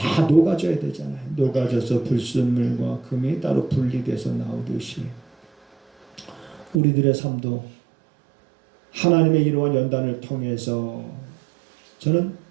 녹아져야 되잖아요. 녹아져서 불순물과 금이 따로 분리돼서 나오듯이 우리들의 삶도 하나님의 이러한 연단을 통해서 저는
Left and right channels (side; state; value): left; drops out; at 6.8 s